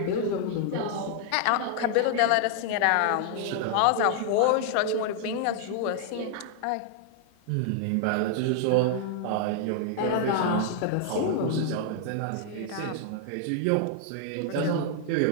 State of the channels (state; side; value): different; both; correlation -0.01